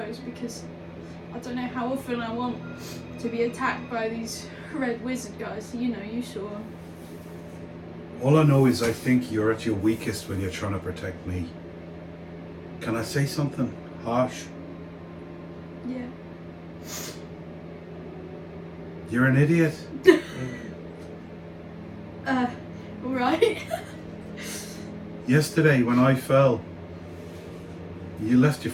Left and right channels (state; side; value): identical; both; correlation 1.00